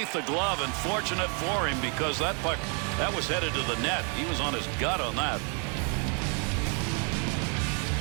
the glove, and fortunate for him because that puck, that was headed to the net. He was on his gut on that.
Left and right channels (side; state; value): left; quieter; 37.8 dB